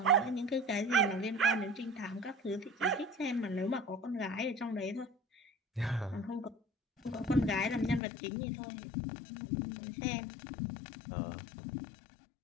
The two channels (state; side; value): drops out; right; at 8.0 s